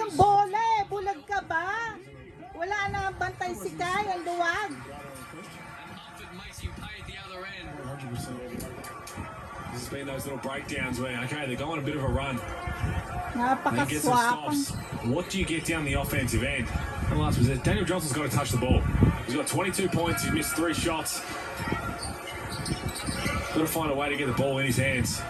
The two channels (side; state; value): both; identical; correlation 1.00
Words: Centre. bola eh. Bulag ka ba? Wala na bantay si Kai, ang luwag. And Mumford makes him pay at the other end. 100%. This has been those little breakdowns where, okay, they're going a bit of a run. Then get some Napakaswapang. stops. What do you get down the offensive end? And last was it. Daniel Johnson's got to touch the ball. He's got 22 points. He's missed 3 shots. Got to find a way to get the ball in his hands.